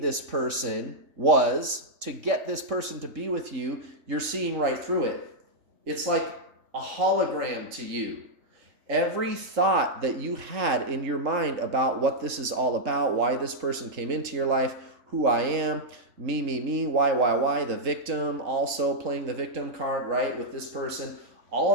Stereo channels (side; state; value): left; late; 3.7 ms